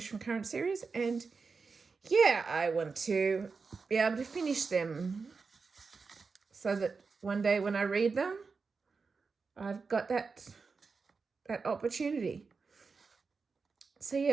from current series, and yeah, I want to be able to finish them so that one day when I read them, I've got that opportunity. So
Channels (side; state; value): left; quieter; 4.7 dB